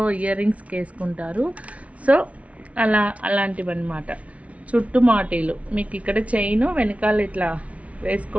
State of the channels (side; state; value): left; late; 0.065 ms